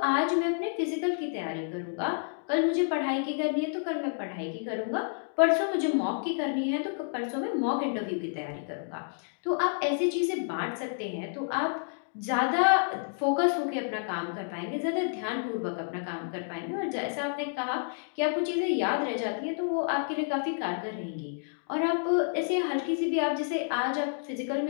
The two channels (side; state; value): right; silent; digital silence